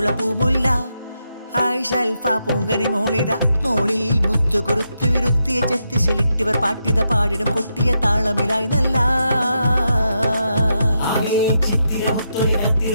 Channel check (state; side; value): inverted; both; correlation -0.83